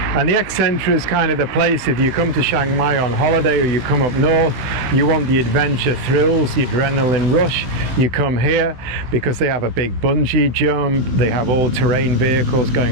the X-Centre is kind of the place, if you come to Chiang Mai on holiday or you come up north, you want the adventure thrills, the adrenaline rush, you come here because they have a big bungee jump, they have all-terrain vehicles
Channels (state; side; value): late; left; 16 ms